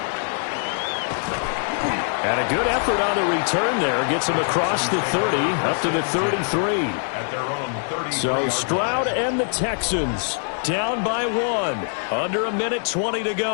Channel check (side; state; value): right; silent; 63 dB below the other